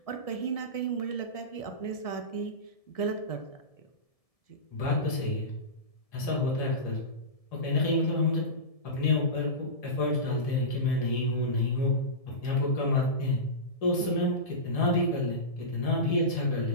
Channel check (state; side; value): late; right; 1.7 ms